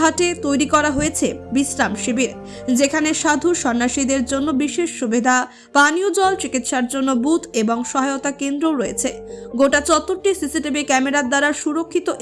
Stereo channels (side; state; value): both; identical; correlation 1.00